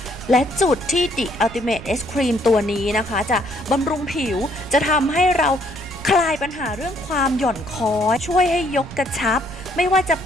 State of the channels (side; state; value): right; noise; rumble, 15 dB below the sound